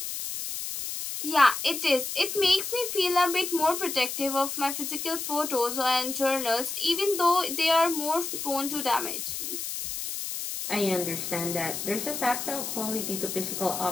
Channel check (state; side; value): noise; left; hiss, 5 dB below the sound